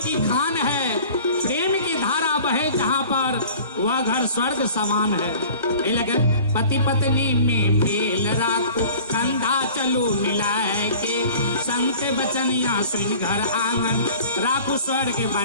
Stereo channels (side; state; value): both; inverted; correlation -0.44